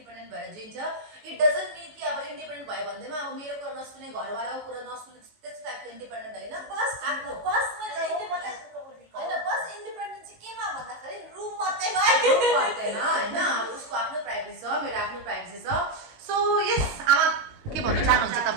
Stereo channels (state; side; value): late; left; 19 ms